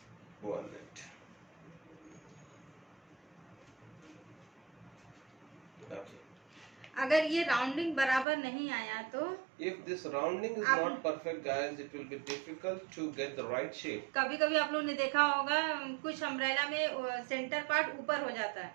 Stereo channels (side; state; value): left; drops out; at 8.2 s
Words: 1 minute. Okay. अगर ये rounding बराबर नहीं आया तो If this rounding is आप- not perfect, guys, it will be difficult to get the right shape. कभी कभी आप लोग ने देखा होगा कुछ अम्ब्रेला में सेंटर पार्ट ऊपर हो जाता है